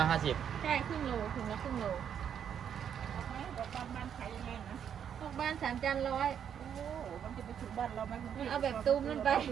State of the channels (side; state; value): left; quieter; 8.5 dB